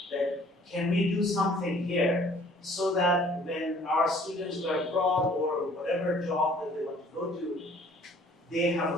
can we do something here so that when our students go abroad or whatever job that they want to go to, they have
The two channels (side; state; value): both; normal; correlation 0.55